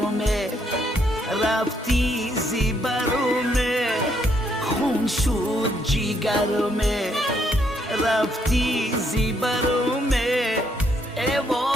رفتی زیبرومه خون شد جیگرومه، رفتی زیبرومه ای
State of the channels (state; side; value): normal; both; correlation 0.73